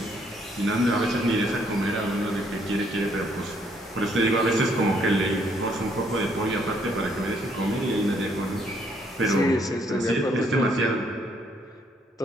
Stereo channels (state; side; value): normal; both; correlation 0.69